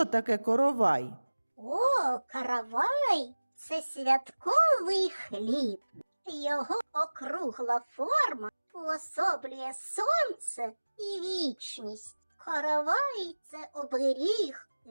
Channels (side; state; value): both; inverted; correlation -1.00